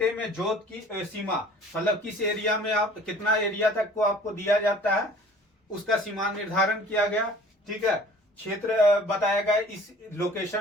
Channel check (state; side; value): normal; both; correlation 0.49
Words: में जोत की सीमा मतलब किस एरिया में आप कितना एरिया तक को आपको दिया जाता है उसका सीमा निर्धारण किया गया, ठीक है। क्षेत्र बताया गया, इस